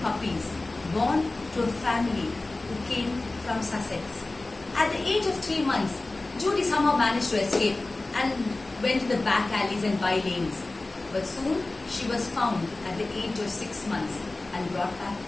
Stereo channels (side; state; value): right; quieter; 3.0 dB